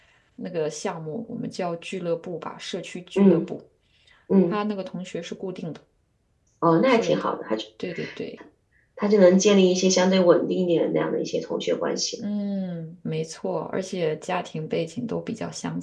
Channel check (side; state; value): both; identical; correlation 1.00